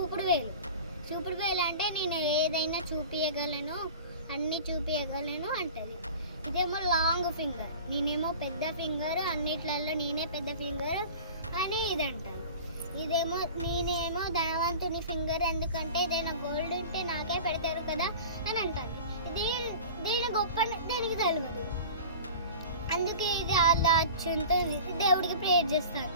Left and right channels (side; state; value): both; inverted; correlation -0.38